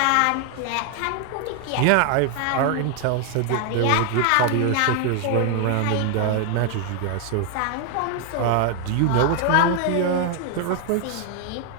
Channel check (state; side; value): different; both; correlation 0.00